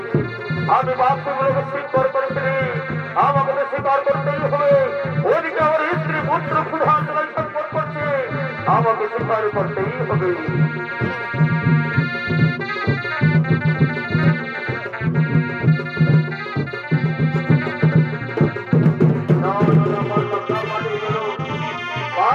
আমি বাপগুলোকে স্বীকার করেছি, আমাকে তো স্বীকার করতেই হবে। ওদিকে আমার স্ত্রী পুত্র প্রধান সম্পদ করছে, আমাকে স্বীকার করতেই হবে।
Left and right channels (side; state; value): both; identical; correlation 1.00